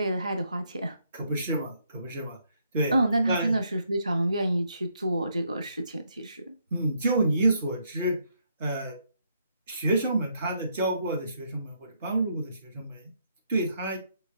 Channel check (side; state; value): both; inverted; correlation -0.74